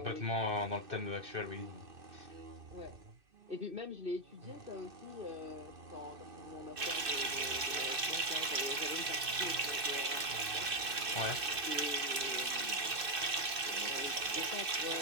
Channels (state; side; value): late; left; 2.6 ms